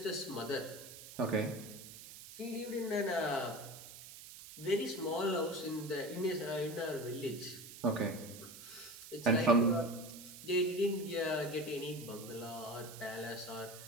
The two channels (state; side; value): noise; right; hiss, 14 dB below the sound